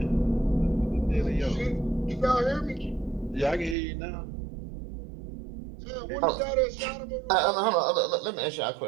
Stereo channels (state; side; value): drops out; left; at 3.8 s